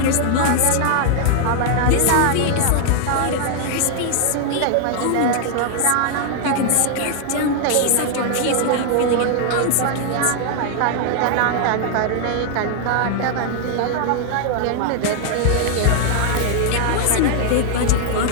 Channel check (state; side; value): different; both; correlation 0.00